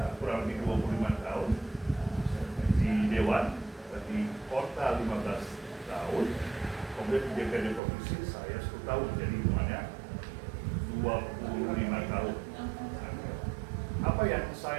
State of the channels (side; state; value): left; drops out; at 7.8 s